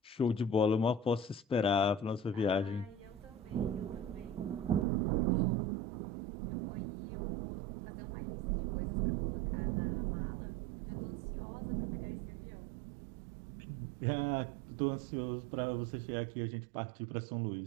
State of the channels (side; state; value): left; drops out; at 4.9 s